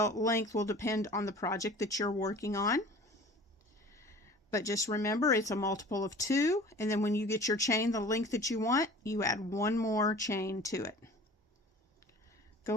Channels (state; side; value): normal; both; correlation 0.44